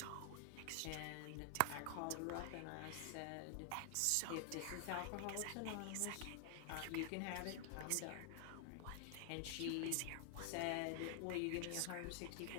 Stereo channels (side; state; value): both; different; correlation 0.00